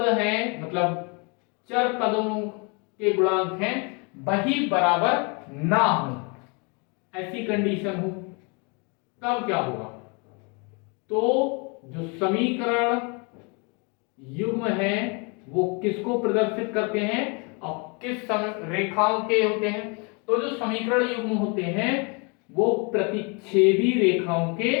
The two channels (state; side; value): quieter; right; 32.7 dB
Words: है, मतलब चर पदों के गुणांक हैं, वही बराबर ना हो, ऐसी कंडीशन हो। तब क्या होगा, तो जो समीकरण युग्म है वो किसको प्रदर्शित करते हैं और किस रेखाओं के होते हैं। तो जो समीकरण युग्म होते हैं वो प्रतिच्छेदी रेखाओं के